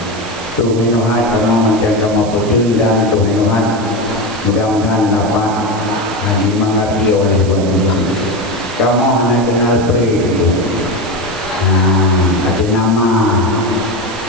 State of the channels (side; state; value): right; noise; hiss, 16 dB below the sound